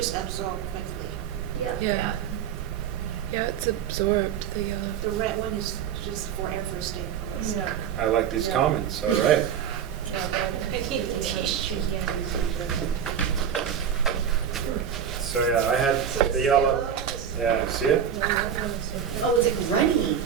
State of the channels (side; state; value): left; quieter; 8.4 dB